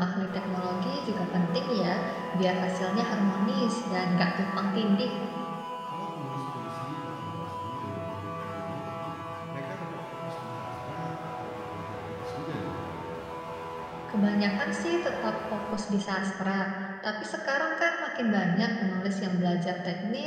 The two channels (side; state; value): both; identical; correlation 1.00